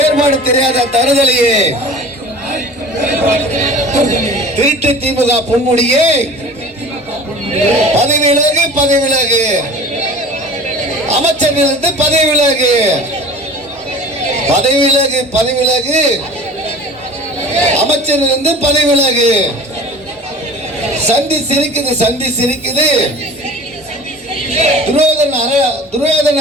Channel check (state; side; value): normal; both; correlation 0.41